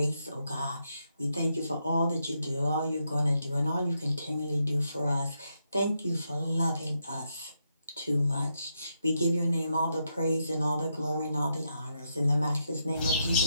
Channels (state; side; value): inverted; both; correlation -0.81